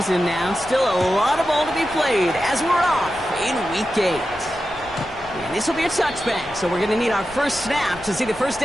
now. Still a lot of ball to be played as we're off in Week 8. And this will be a touchback, so we're going to need our first snap to see the first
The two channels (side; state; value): left; noise; rumble, 20 dB below the sound